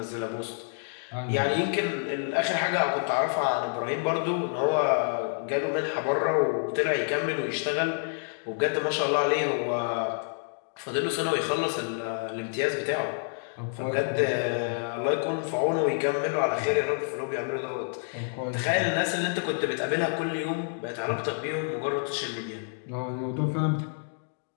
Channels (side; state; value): right; silent; digital silence